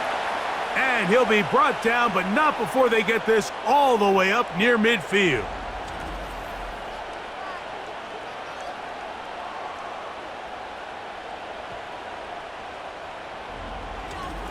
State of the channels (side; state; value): both; identical; correlation 1.00